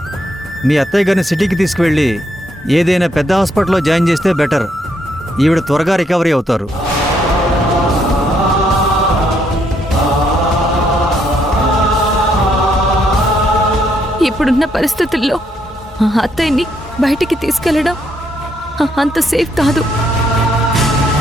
మీ అత్తయ్య గారిని సిటీకి తీసుకువెళ్ళి ఏదైనా పెద్ద హాస్పిటల్లో జాయిన్ చేస్తే బెటర్. ఈవిడ త్వరగా రికవరీ అవుతారు. ఇప్పుడున్న పరిస్థితుల్లో అత్తయ్యని బయటికి తీసుకెళ్లడం అంత సేఫ్ కాదు.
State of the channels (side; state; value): both; normal; correlation 0.73